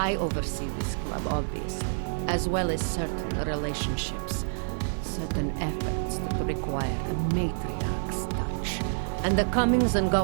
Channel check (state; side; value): silent; left; digital silence